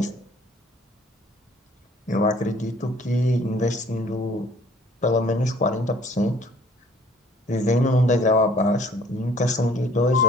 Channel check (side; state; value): both; normal; correlation 0.57